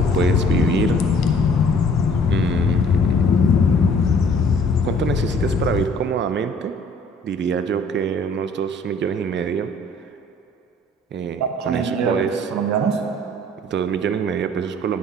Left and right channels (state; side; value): normal; both; correlation 0.55